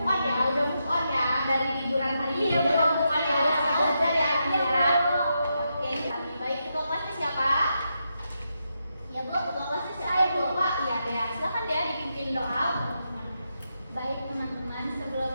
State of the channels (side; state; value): both; inverted; correlation -0.84